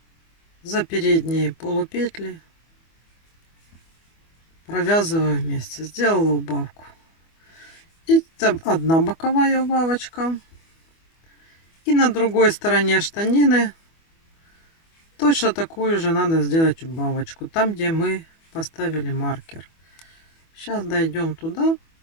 за передние полупетли провязываю вместе. Сделала убавку. И там одна боковая убавочка. И на другой стороне штанины точно такую же надо сделать убавочку. Там, где мы поставили маркер. Сейчас дойдем туда.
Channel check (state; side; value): late; right; 24 ms